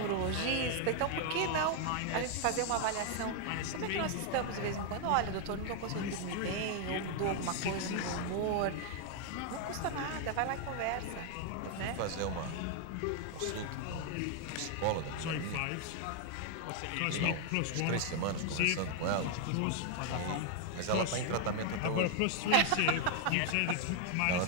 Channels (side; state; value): both; different; correlation 0.00